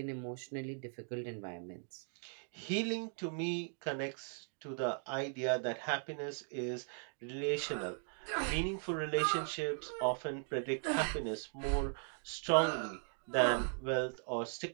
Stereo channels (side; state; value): left; silent; 52 dB below the other